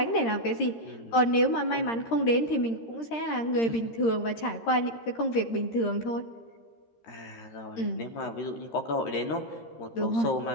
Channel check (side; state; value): right; late; 13 ms